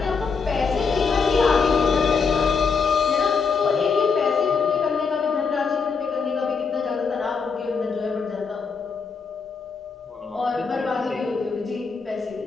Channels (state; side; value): quieter; right; 5.3 dB